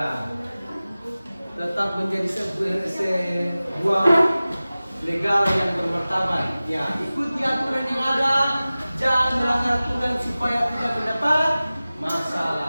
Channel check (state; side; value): inverted; both; correlation -0.97